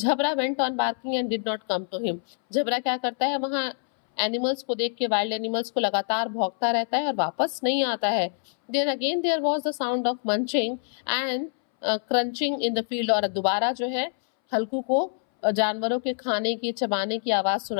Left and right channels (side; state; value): right; silent; 61 dB below the other